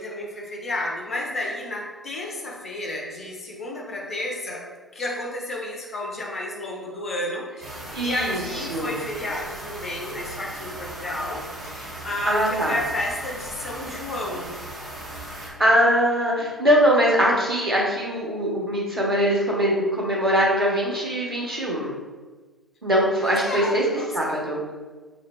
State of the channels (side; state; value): both; normal; correlation 0.46